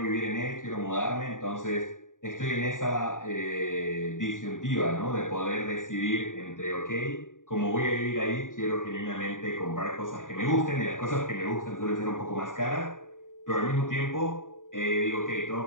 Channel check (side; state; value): right; late; 0.88 ms